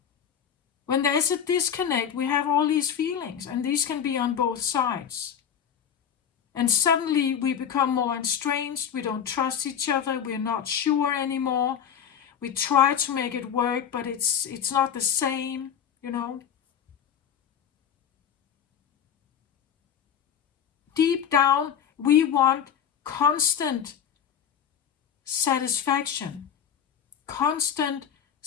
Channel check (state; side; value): quieter; right; 8.4 dB